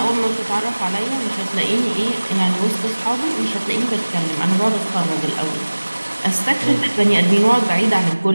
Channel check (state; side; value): inverted; both; correlation -1.00